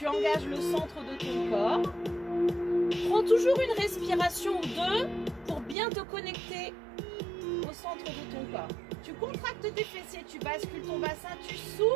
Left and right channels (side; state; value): left; drops out; at 5.8 s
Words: engages le centre de ton corps. Prends toujours une respiration ou 2 pour bien te connecter au centre de ton corps. Tu contractes tes fessiers, tu bascules ton bassin, tu